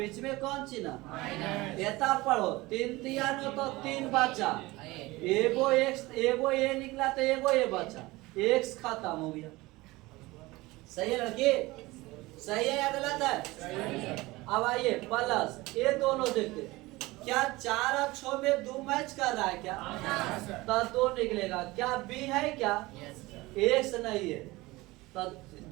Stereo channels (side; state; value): left; quieter; 20.7 dB